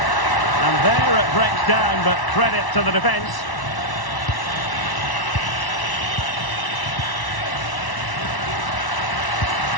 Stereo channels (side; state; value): right; late; 1.1 ms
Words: And there it breaks down, but credit to the defence.